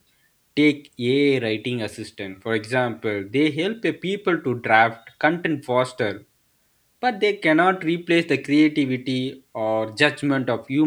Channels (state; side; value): identical; both; correlation 1.00